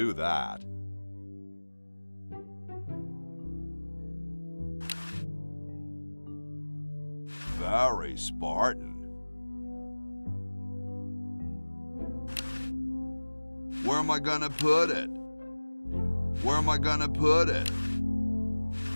that. Very Spartan. Where am I gonna put it? Where am I gonna put it?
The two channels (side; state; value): both; inverted; correlation -1.00